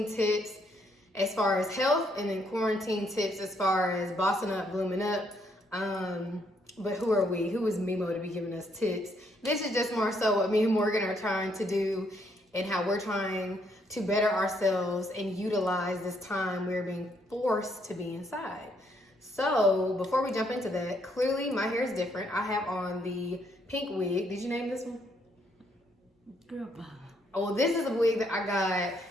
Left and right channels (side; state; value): both; normal; correlation 0.72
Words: tips as far as health, and then quarantine tips as far as bossing up, blooming up. But who are we? Who is MeMo to be giving us tips? This is just more so what me and Morgan are trying to do and how we're trying to better ourselves and utilize this time we're being forced to be inside. So before we jump into that, clearly my hair is different. I have on the pink wig. Did you name this one? Girl, bye. Oh, well, this is a wig that I got.